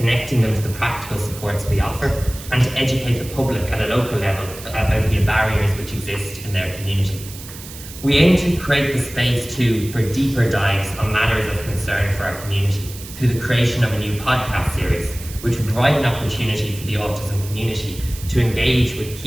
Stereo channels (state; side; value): noise; right; hiss, 14 dB below the sound